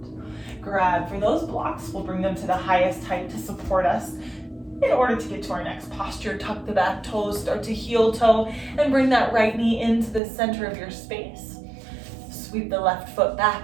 Grab for those blocks. We'll bring them to the highest height to support us. In order to get to our next posture, tuck the back toes, start to heel toe, and bring that right knee into the center of your space. Sweep the left foot back,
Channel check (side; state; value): left; drops out; at 10.2 s